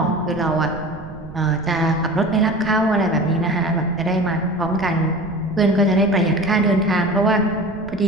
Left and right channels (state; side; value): noise; right; rumble, 17 dB below the sound